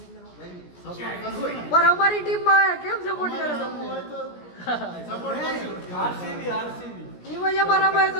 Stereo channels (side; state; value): right; late; 17 ms